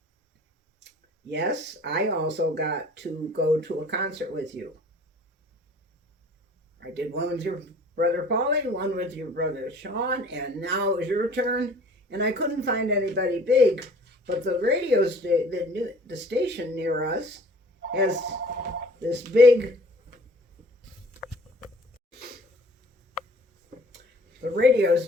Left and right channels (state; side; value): normal; both; correlation 0.50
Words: Yes, I also got to go to a concert with you. I did one with your brother Paulie, one with your brother Sean, and now it was your turn. And I couldn't find anybody big, but the the station near us has this big. The radio